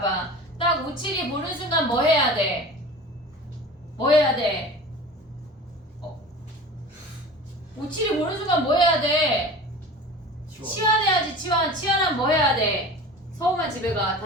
딱 572 보는 순간 뭐 해야 돼? 뭐 해야 돼? 572 보는 순간 뭐 해야 돼? 치환해야지 치환. 치환하면 뭐 해야 돼? 서우만 집에 가.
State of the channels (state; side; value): normal; both; correlation 0.37